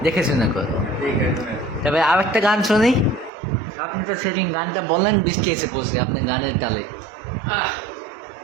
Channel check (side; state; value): left; drops out; at 3.3 s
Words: দেখে শুনে করো। দেখে শুনে। তবে আর একটা গান শুনি। আপনি তো সেদিন গানটা বললেন, বৃষ্টি এসে পড়ছে আপনি গানের তালে। আহ